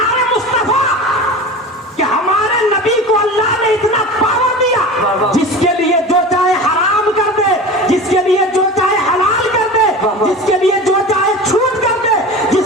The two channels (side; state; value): both; normal; correlation 0.32